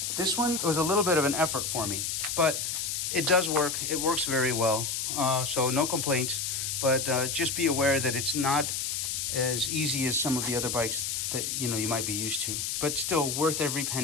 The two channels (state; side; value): noise; left; hiss, 2 dB below the sound